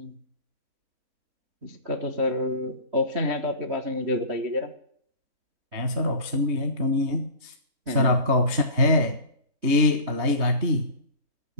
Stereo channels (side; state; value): left; late; 3.2 ms